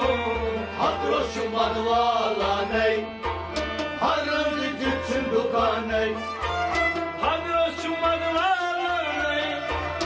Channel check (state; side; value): identical; both; correlation 1.00